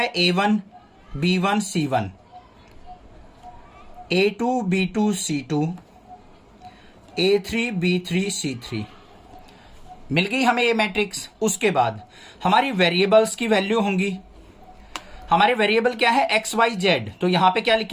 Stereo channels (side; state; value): both; identical; correlation 1.00